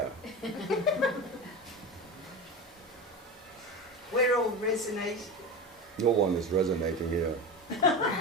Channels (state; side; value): normal; both; correlation 0.26